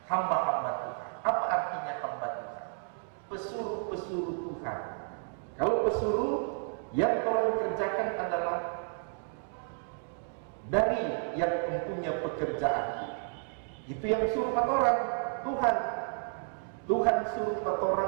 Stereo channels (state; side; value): silent; left; 57 dB below the other